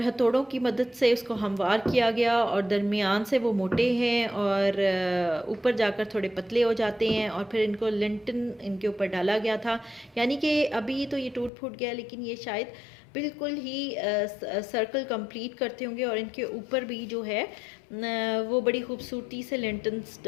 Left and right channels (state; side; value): drops out; right; at 11.5 s